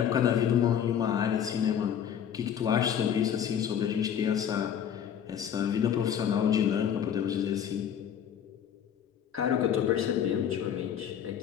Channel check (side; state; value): right; quieter; 8.9 dB